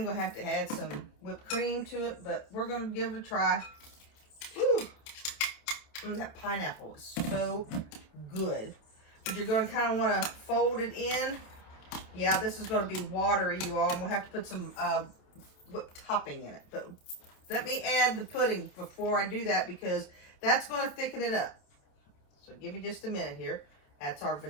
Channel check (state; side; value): late; right; 28 ms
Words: going to have to add some whipped cream to it. But we're going to give it a try. Woo! That pineapple is so good. But you're going to kind of want to fold it in. Yeah, this is going to be watery, you all. And we'll have to put some whipped topping in it. But let me add the pudding before I do that because that's going to thicken it up. So give me just a minute here. That's our